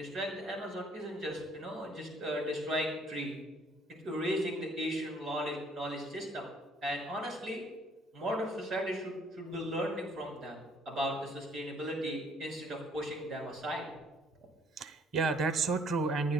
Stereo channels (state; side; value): normal; both; correlation 0.62